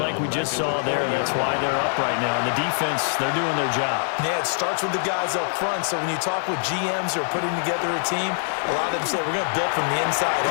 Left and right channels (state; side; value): silent; right; 60 dB below the other